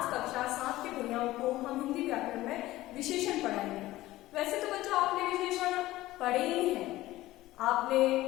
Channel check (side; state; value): right; quieter; 16.8 dB